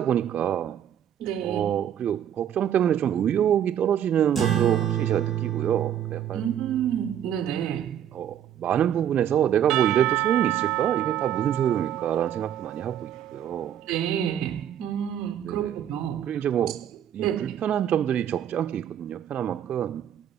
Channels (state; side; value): quieter; left; 10.0 dB